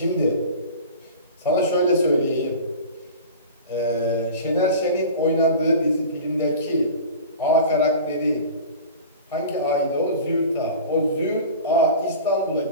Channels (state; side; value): inverted; both; correlation -0.37